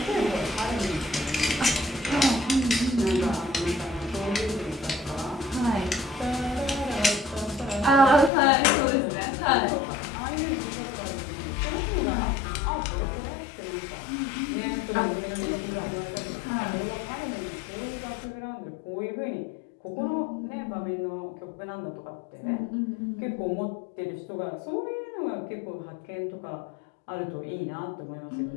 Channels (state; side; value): drops out; right; at 8.3 s